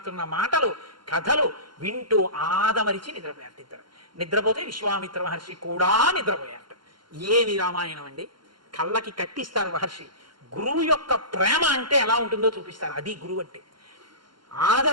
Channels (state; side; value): late; left; 0.72 ms